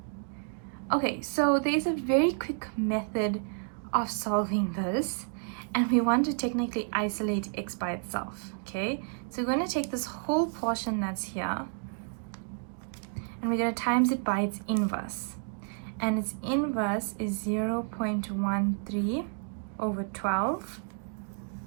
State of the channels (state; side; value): silent; left; 57 dB below the other